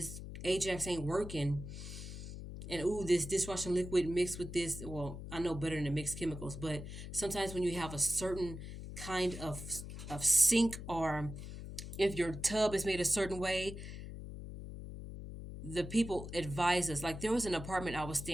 Ajax ain't working, and ooh, this dishwashing liquid mixed with this, well, I know better than the mixed chemicals, but sometimes when you have a certain kind of sink, or if your tub is made a certain way, the people advise us. Like there was an apartment I was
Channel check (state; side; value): noise; left; hum, 9 dB below the sound